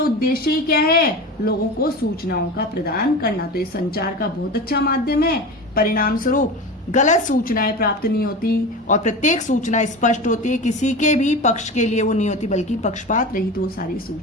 ही क्या है? लोगों को सूचनाओं का प्रदान करना। तो ये संचार का बहुत अच्छा माध्यम है। परिणाम स्वरूप गलत सूचनाएं प्राप्त नहीं होती और प्रत्येक सूचना स्पष्ट होती है, किसी के भी पक्ष के लिए वो नहीं होती, बल्कि पक्षपात रहित वो सारी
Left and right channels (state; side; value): normal; both; correlation 0.29